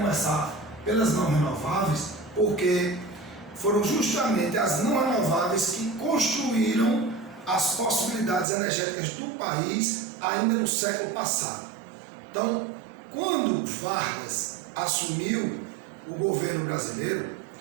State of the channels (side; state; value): left; drops out; at 8.5 s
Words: pelas não renováveis, porque foram justamente as não renováveis que construíram as possibilidades energéticas do país ainda no século passado. Então, quando Vargas assumiu o governo brasileiro,